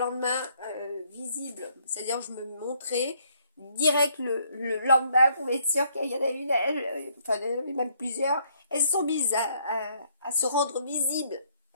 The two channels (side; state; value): both; inverted; correlation -0.68